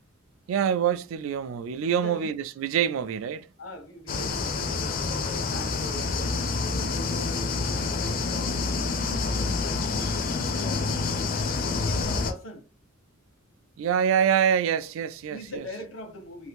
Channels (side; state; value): both; normal; correlation 0.12